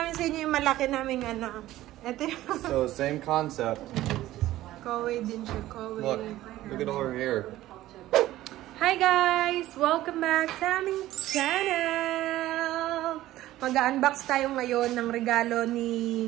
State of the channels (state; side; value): quieter; left; 15.2 dB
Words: sa inyo yung malaki naming ano. Ito yung... So same concept. Kaway din siya, kaway. Look at all her hair. Hi guys! Welcome back sa aming channel! Mag-unbox tayo ngayon ng regalo ni